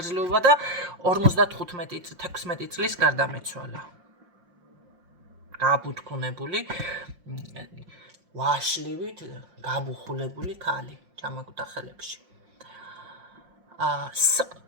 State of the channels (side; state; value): left; late; 5.7 ms